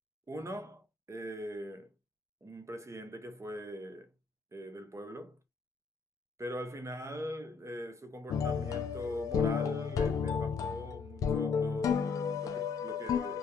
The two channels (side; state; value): right; quieter; 5.0 dB